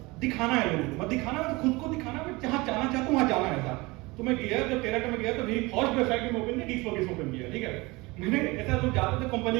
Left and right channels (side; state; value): left; quieter; 23.5 dB